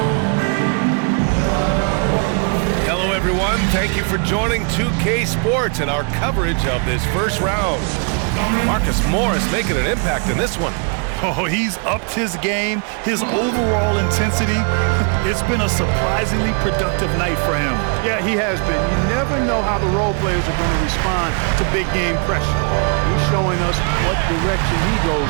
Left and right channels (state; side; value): quieter; left; 38.9 dB